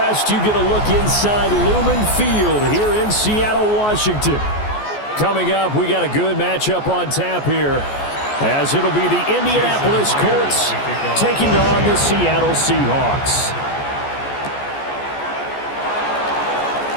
You get a look inside Lumen Field here in Seattle, Washington. Coming up, we got a good matchup on tap here, as it'll be the Indianapolis Colts taking on the Seattle Seahawks.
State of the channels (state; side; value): late; right; 14 ms